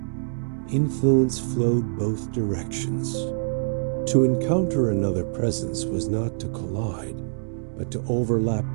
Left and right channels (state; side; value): silent; left; digital silence